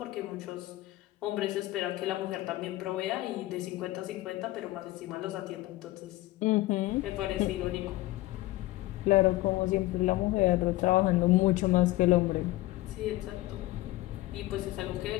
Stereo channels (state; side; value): quieter; right; 18.0 dB